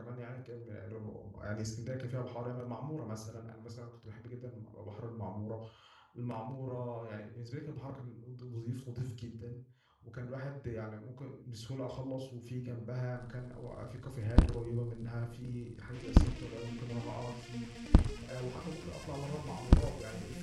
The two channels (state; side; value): identical; both; correlation 1.00